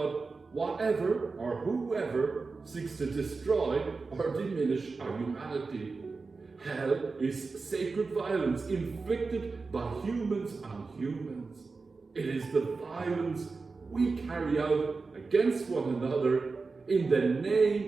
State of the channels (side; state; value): left; quieter; 4.2 dB